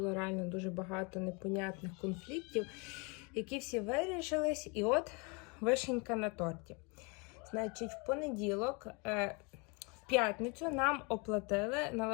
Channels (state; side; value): quieter; right; 31.2 dB